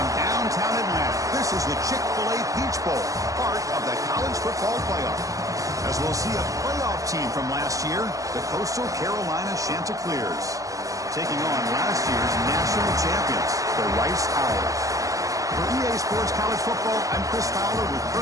downtown Atlanta. This is the Chick-fil-A Peach Bowl, part of the college football playoff. As we'll see a playoff team from last year, the Coastal Carolina Chanticleers, taking on last year's national champions, the Rice Owls. For EA Sports College Football, I'm Chris Fowler with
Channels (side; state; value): left; late; 0.16 ms